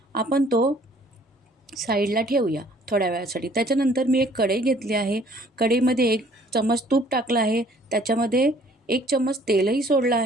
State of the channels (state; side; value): normal; both; correlation 0.57